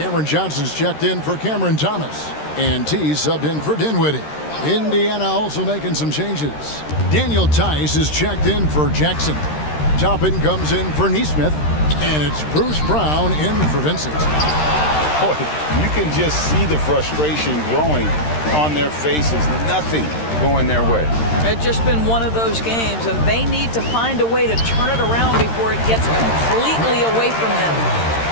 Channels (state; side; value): late; right; 13 ms